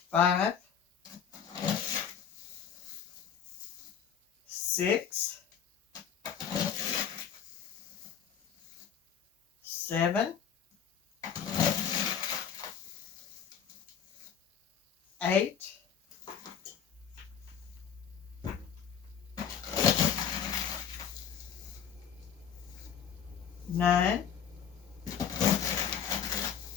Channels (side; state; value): right; quieter; 8.1 dB